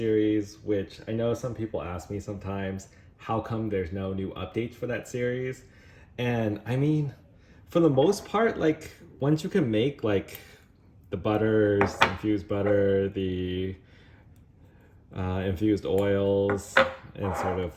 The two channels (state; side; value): identical; both; correlation 1.00